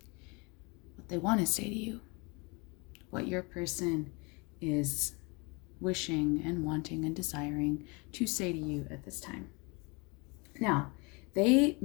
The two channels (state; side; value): quieter; right; 29.1 dB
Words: What they want to say to you. What your person is wishing and wanting and desiring to say to you at this time. Now, they